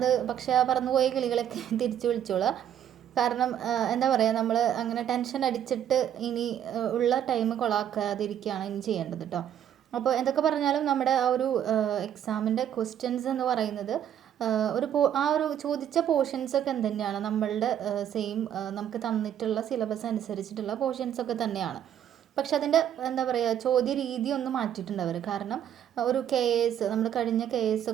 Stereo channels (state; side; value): quieter; left; 10.1 dB